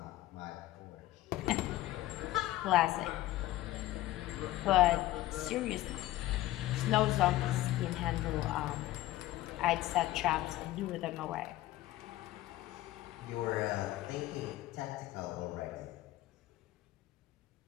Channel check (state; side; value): quieter; right; 16.0 dB